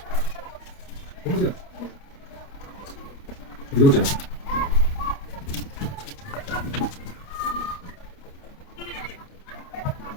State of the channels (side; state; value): right; late; 29 ms